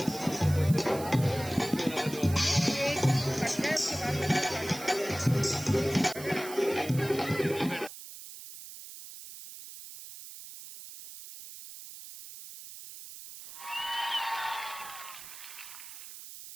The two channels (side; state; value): right; noise; hiss, 13 dB below the sound